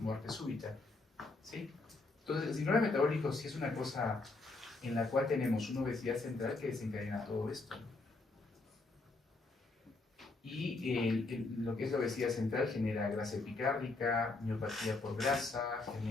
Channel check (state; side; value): quieter; right; 3.4 dB